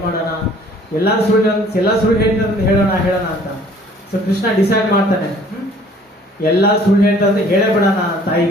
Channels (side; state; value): both; normal; correlation 0.54